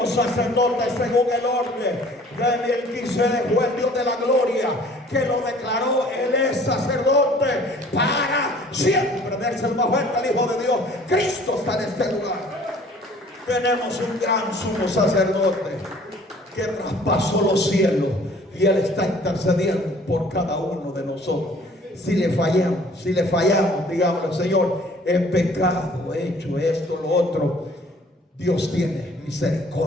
sacerdote según el orden de Melquisedec. Fue el Dios de la gloria que lo declaró. Él es sacerdote para siempre. Dense el más fuerte al Hijo de Dios. Cristo está en este lugar. Tenemos un gran sumo sacerdote que traspasó los cielos, y Él está intercediendo por cada uno de nosotros. Si le fallamos, digamos: Señor, he pecado, he hecho esto, lo otro. Dios tiene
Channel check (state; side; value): normal; both; correlation 0.53